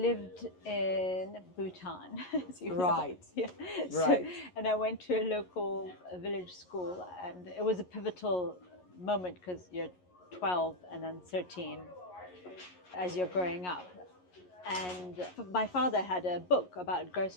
in Bhutan, as you know. Right. Yeah. Right. And I went to a local village school, and it was a pivotal moment because you're 12 and then 13 as you're growing up. And my father had a book about gross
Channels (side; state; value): right; late; 11 ms